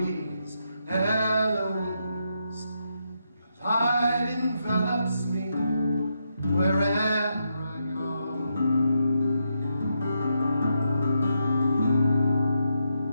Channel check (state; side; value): inverted; both; correlation -0.82